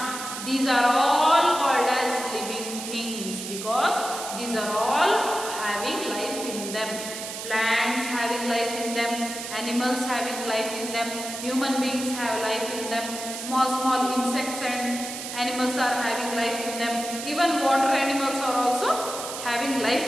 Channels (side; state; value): right; noise; hiss, 8 dB below the sound